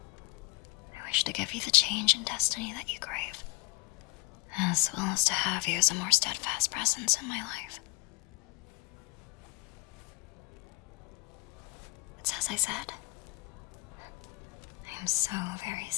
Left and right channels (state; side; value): quieter; right; 26.8 dB